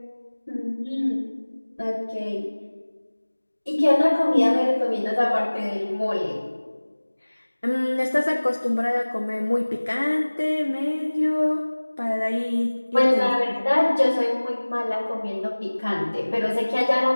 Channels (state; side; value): inverted; both; correlation -1.00